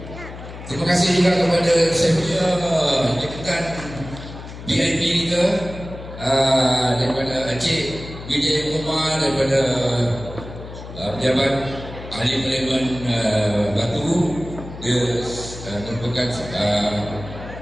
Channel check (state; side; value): noise; left; hum, 13 dB below the sound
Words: Terima kasih juga kepada saya punya jemputan VIP kita daripada Encik Vijay Kumar, daripada pejabat ahli parlimen Batu. Dia merupakan